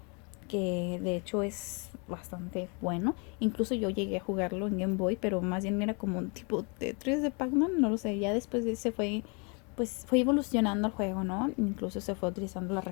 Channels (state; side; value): quieter; right; 33.6 dB